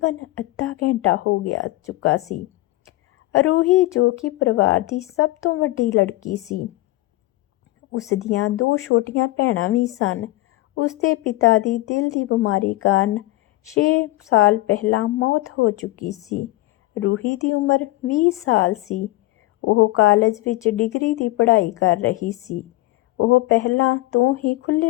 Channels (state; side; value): quieter; right; 19.1 dB